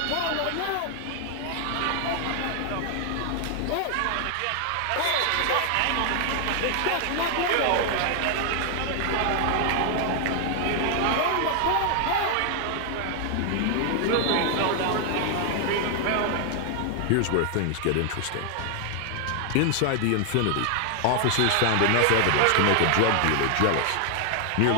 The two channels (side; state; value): both; different; correlation 0.00